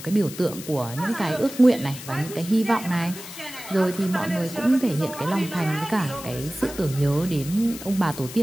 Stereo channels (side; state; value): left; noise; hiss, 13 dB below the sound